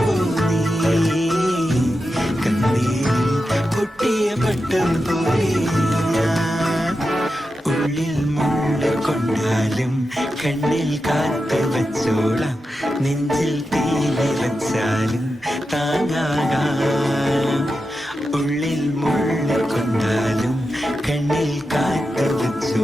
നീ, കണ്ണീരിൽ പൊട്ടിയ പട്ടം പോലെ ഞാൻ. ഉള്ളിൽ മുള്ള കൊണ്ടാലും കണ്ണിൽ കാത്തു വച്ചോളാം, നെഞ്ചിൽ തീ നിറച്ചാലും താങ്ങാകാം. ഉള്ളിൽ മുള്ള കൊണ്ടാലും കണ്ണിൽ കാത്തു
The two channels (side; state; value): both; normal; correlation 0.90